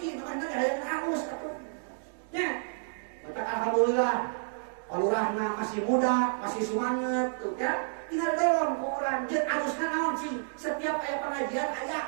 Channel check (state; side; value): silent; left; digital silence